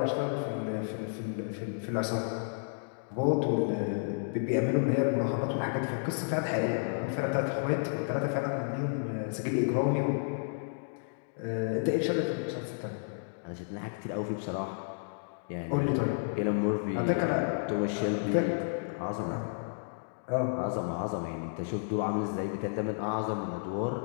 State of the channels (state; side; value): silent; right; digital silence